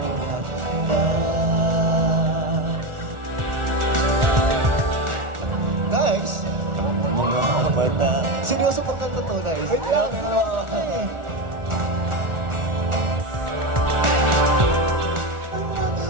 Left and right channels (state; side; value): late; left; 1.4 ms